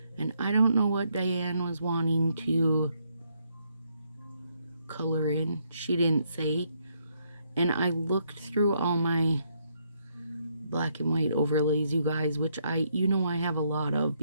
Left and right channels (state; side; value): inverted; both; correlation -0.74